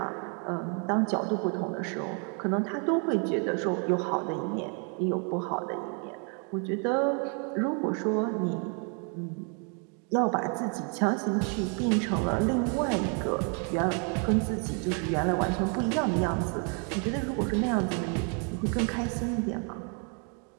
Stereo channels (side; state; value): left; quieter; 38.7 dB